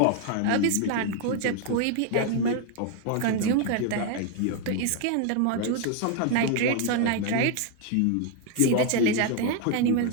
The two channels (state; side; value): different; both; correlation 0.01